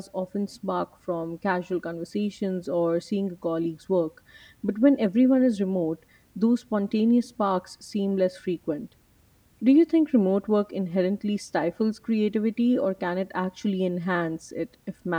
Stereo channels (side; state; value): both; identical; correlation 1.00